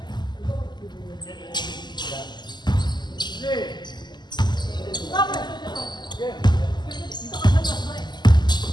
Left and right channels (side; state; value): right; late; 0.21 ms